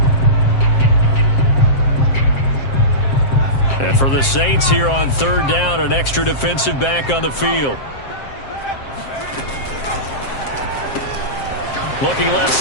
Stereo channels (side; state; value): right; late; 7.5 ms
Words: And for the Saints here on 3rd down, an extra defensive back on the field. Looking left